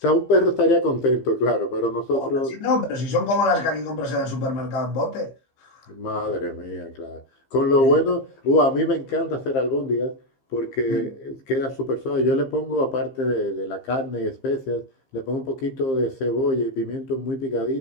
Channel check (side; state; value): right; late; 15 ms